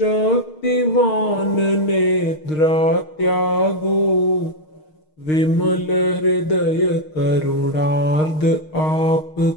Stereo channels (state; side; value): late; right; 6.5 ms